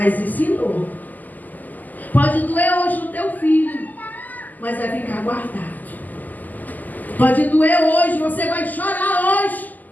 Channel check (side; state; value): right; late; 0.083 ms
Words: ensinou. Pode doer hoje no teu filho, mas vai ficar guardado. Pode doer hoje, você vai chorar hoje,